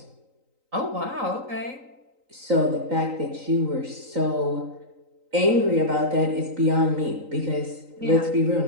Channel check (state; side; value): late; left; 3.9 ms